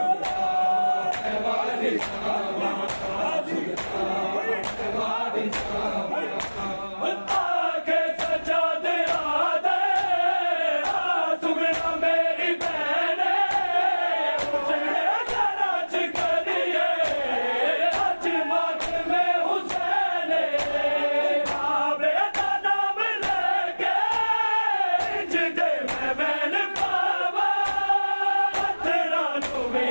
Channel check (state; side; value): inverted; both; correlation -1.00